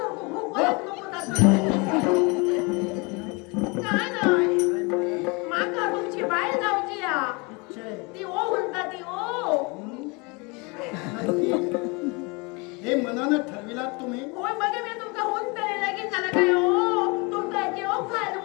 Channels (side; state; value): right; quieter; 28.8 dB